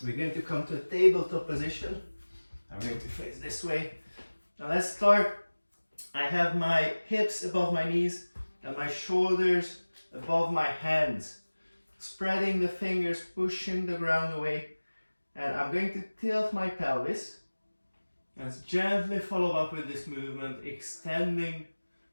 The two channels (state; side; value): inverted; both; correlation -1.00